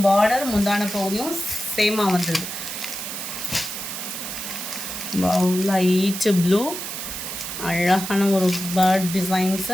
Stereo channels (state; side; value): noise; right; hiss, 6 dB below the sound